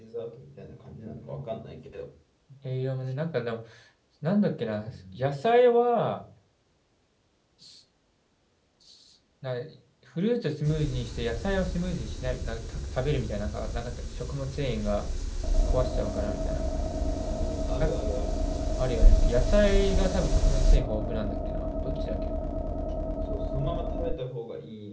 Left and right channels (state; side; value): identical; both; correlation 1.00